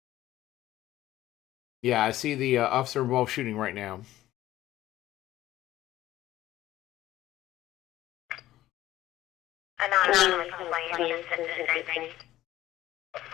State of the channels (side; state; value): right; quieter; 14.6 dB